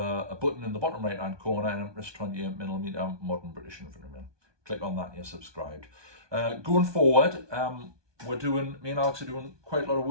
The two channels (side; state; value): left; late; 1.2 ms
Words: button in the bottom right hand corner, and it's 28mm modern British infantryman. Click on that and you're subscribed. Going forward, me and Alex are doing quite a lot of